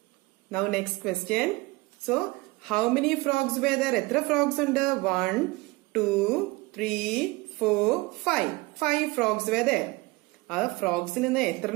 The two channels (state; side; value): quieter; left; 23.2 dB